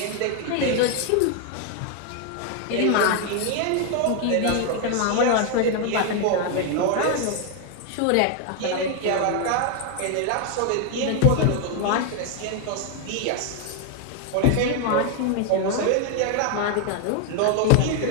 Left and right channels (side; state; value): both; different; correlation 0.00